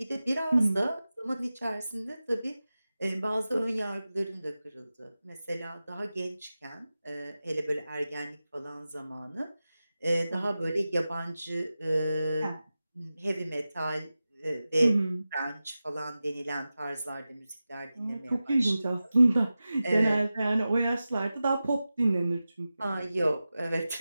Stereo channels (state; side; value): inverted; both; correlation -0.94